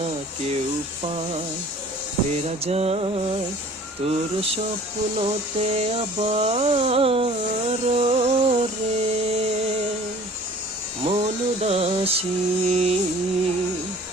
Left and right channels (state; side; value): normal; both; correlation 0.49